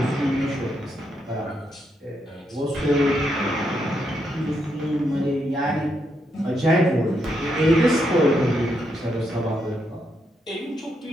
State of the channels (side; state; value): both; normal; correlation 0.79